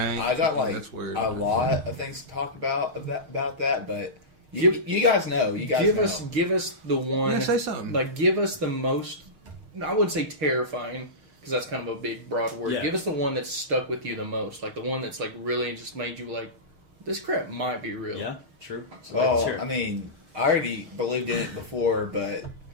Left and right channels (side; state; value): left; late; 6.5 ms